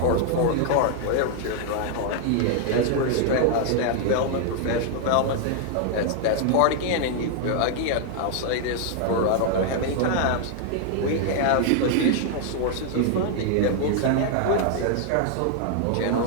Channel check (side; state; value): both; different; correlation 0.00